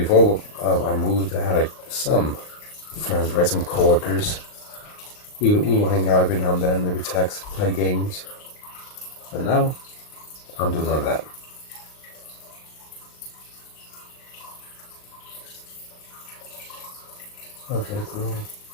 I moved, I had like some friends, right? Some coworkers. We will hang out every now and then, maybe text, play games. But now, I don't do none of that. Okay, cool.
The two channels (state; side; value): late; right; 39 ms